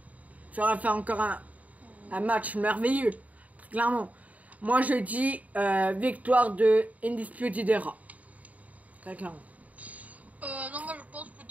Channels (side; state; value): left; late; 0.072 ms